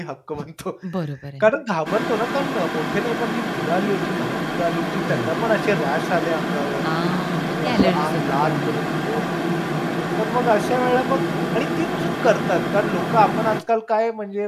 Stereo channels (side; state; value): both; identical; correlation 1.00